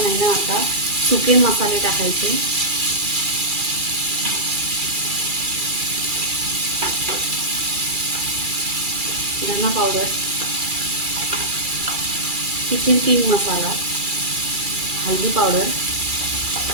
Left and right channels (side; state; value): left; late; 2.4 ms